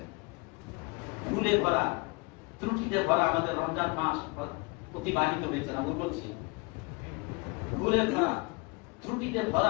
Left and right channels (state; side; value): quieter; right; 28.6 dB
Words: ভুলে ভরা, ত্রুটিতে ভরা আমাদের রমজান মাস অতিবাহিত হয়েছে না, বলছি ভুলে ভরা, ত্রুটিতে